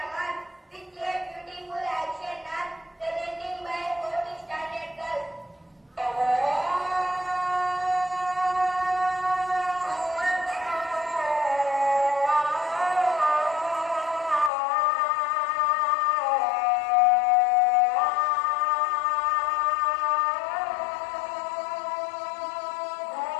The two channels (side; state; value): right; drops out; at 14.5 s